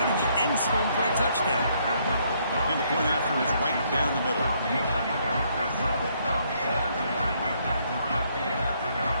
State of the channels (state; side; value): inverted; both; correlation -0.70